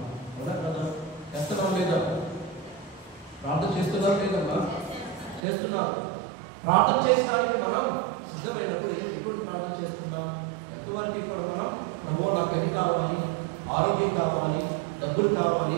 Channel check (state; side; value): drops out; left; at 5.4 s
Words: కదా కదా? చేస్తున్నాం లేదా? ప్రార్థన చేస్తున్నారు లేదమ్మా? చేస్తున్నారు. ప్రార్థన చేయడానికి మనం సిద్ధమైనప్పుడు ఎప్పుడు ప్రార్థన చేస్తున్నాం? ఎంతవరకు ఇప్పుడు మనం ప్రభువా నాకు అది కావాలి, ఆరోగ్యం కావాలి, డబ్బులు కావాలి,